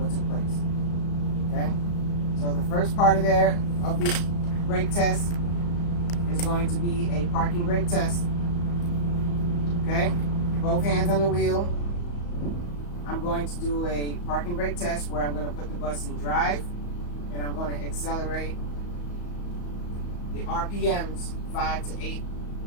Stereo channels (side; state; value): right; late; 34 ms